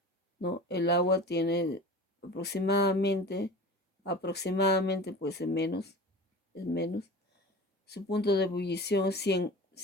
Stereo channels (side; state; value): both; normal; correlation 0.35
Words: ¿no? El agua tiene aproximadamente pues es menos. Su punto de ebullición es